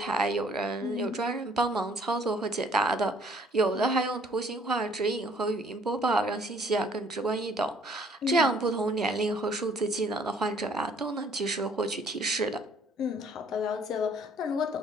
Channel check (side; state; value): both; normal; correlation 0.60